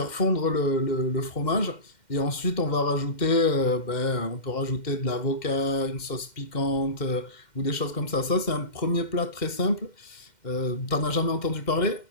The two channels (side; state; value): right; late; 2.1 ms